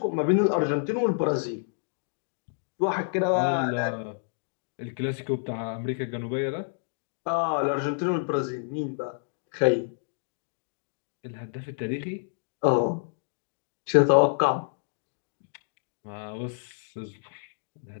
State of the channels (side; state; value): right; silent; digital silence